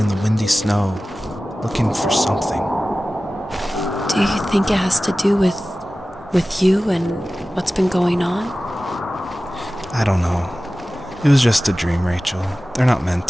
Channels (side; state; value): both; normal; correlation 0.96